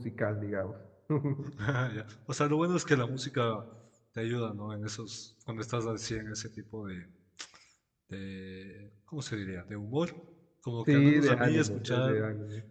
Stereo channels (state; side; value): identical; both; correlation 1.00